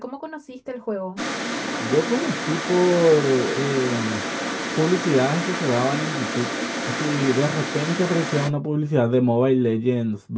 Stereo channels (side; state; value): both; identical; correlation 1.00